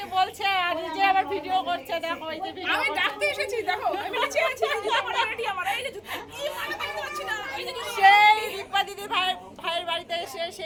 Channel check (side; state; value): both; identical; correlation 1.00